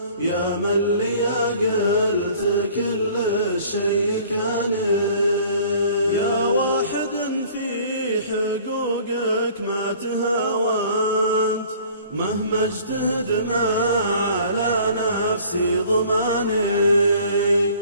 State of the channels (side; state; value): both; inverted; correlation -0.51